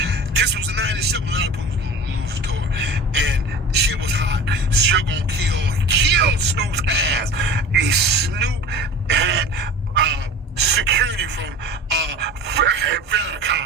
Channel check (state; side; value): normal; both; correlation 0.38